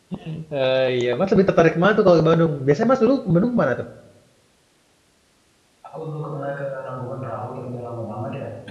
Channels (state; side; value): identical; both; correlation 1.00